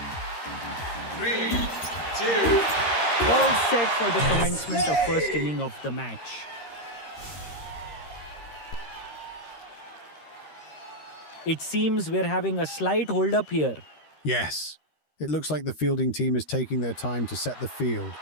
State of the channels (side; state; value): right; late; 13 ms